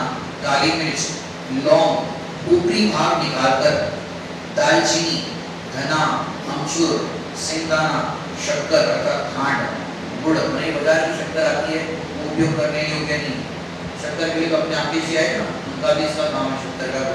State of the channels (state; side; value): identical; both; correlation 1.00